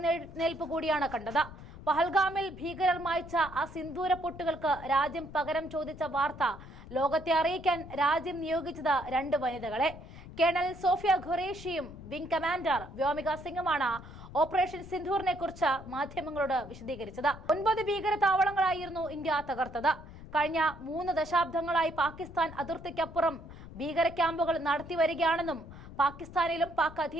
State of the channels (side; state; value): left; noise; rumble, 15 dB below the sound